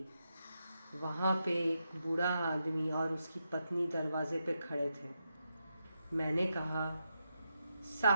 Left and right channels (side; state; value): both; inverted; correlation -0.85